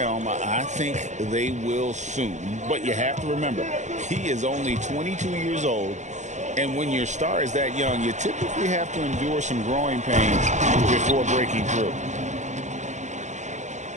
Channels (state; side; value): late; left; 0.34 ms